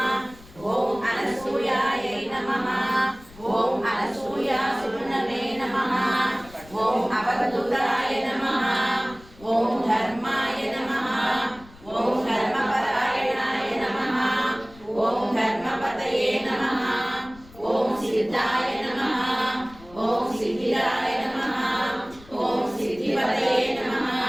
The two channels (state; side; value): noise; left; rumble, 22 dB below the sound